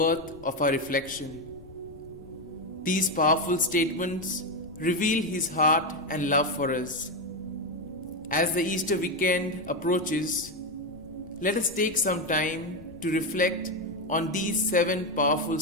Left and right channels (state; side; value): noise; left; rumble, 20 dB below the sound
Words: of our reflection. These powerful statements reveal his heart and love for us. As the Easter weekend approaches, let us take some time to reflect on these 7 powerful